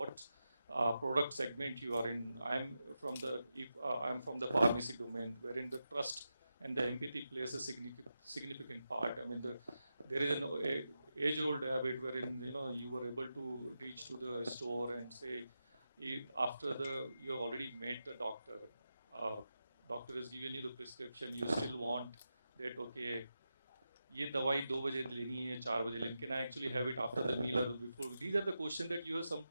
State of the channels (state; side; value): inverted; both; correlation -0.89